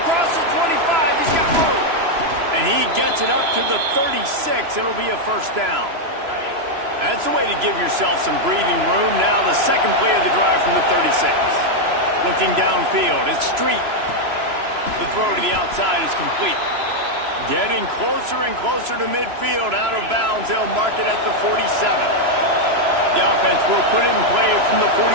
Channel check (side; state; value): left; late; 3.0 ms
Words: Across the 25, he's got room. And he gets it up to the 36. It'll be a first down. That's a way to give yourself some breathing room. Now the second play of the drive from the 36. Looking downfield, it's Street. The throw to the outside is complete. Getting closer and closer to midfield, out of bounds. They'll mark it at the 47. The offense will put it in play from the 47